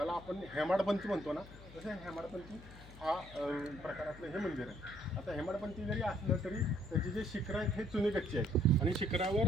आपण हेमाडपंथी म्हणतो ना तसं हेमाडपंथी हा प्रकारातलं हे मंदिर आहे. आता हेमाडपंथी जरी असलं तरी त्याचे जे शिखरं आहेत हे चुनेगच्चे आहेत आणि शिखरावर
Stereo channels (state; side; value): noise; left; hum, 18 dB below the sound